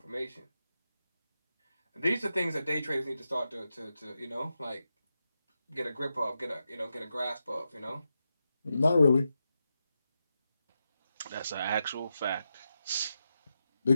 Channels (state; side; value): inverted; both; correlation -0.88